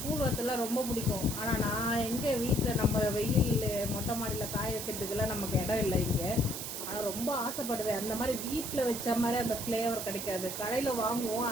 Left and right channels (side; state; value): right; noise; hiss, 6 dB below the sound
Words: கூழ் வத்தல்லாம் ரொம்ப பிடிக்கும். ஆனால் நான் எங்கே வீட்டில் நம்ம வெயில் மொட்டை மாடியில் காய வைக்கிறதுக்கெல்லாம் நமக்கு இடம் இல்லை இங்கே. ஆனால் ரொம்ப ஆசைப்படுவேன். அந்த மாதிரி வீட்டில் வச்ச மாதிரி அந்த ஃப்ளேவர் கிடைக்காது, கடையில் வாங்குவோம்.